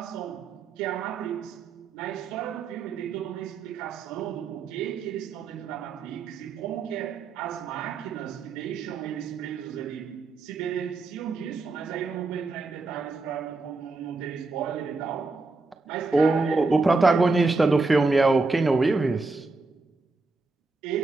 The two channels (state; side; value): quieter; left; 3.8 dB